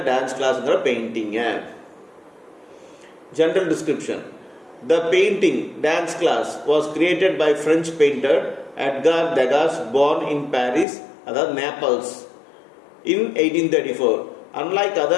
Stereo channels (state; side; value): drops out; right; at 10.9 s